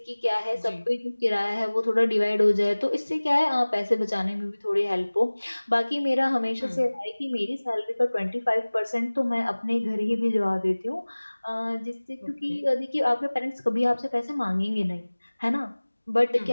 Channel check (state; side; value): inverted; both; correlation -1.00